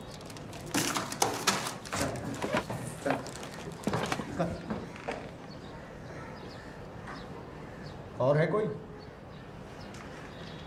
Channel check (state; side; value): identical; both; correlation 1.00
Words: और है कोई?